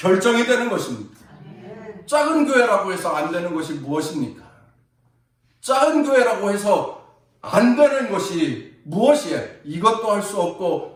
되는 것입니다. 작은 교회라고 해서 안 되는 것이 무엇입니까? 작은 교회라고 해서 안 되는 것이 무엇이에요? 이것도 할 수 없고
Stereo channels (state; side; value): identical; both; correlation 1.00